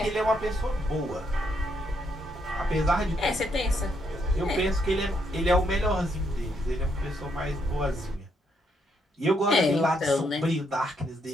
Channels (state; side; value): normal; both; correlation 0.75